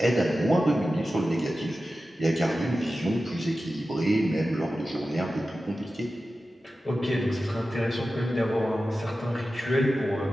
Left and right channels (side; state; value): both; normal; correlation 0.94